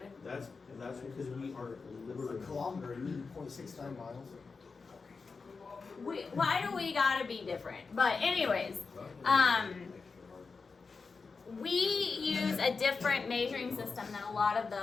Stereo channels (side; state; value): right; quieter; 4.6 dB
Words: That's because we are liberal. A kilometer, you mean 0.69 miles? Why do we gotta be different? But anyways, we use a different measuring system than a lot of